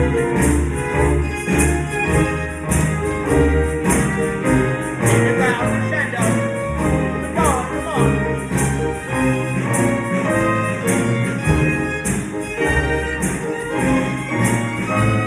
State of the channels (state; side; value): identical; both; correlation 1.00